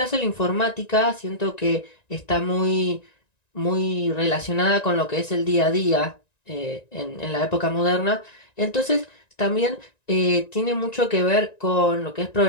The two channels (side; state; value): right; late; 1.9 ms